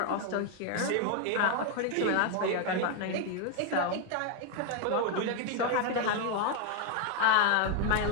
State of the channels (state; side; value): different; both; correlation 0.01